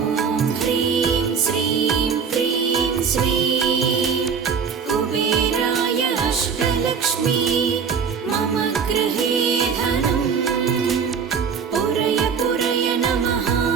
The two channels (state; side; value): quieter; left; 6.2 dB